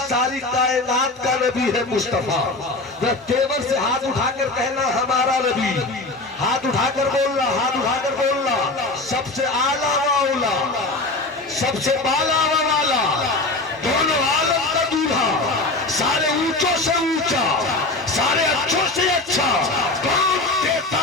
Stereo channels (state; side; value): quieter; right; 3.1 dB